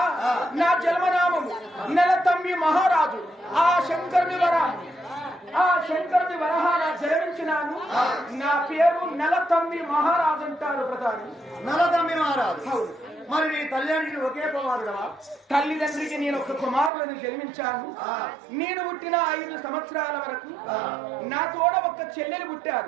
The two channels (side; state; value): left; drops out; at 16.9 s